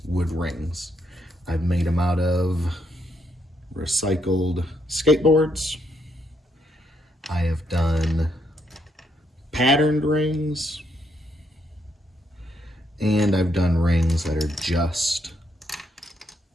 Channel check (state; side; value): normal; both; correlation 0.75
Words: wood rings. I've made them out of recycled skateboards. I have done patterned rings, and I've done rings that are just